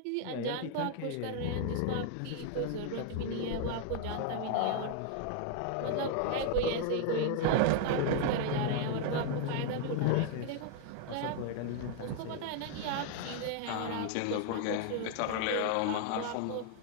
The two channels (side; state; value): both; different; correlation 0.00